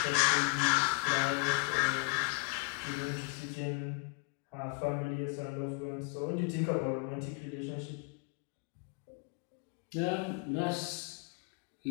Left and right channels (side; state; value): right; quieter; 33.8 dB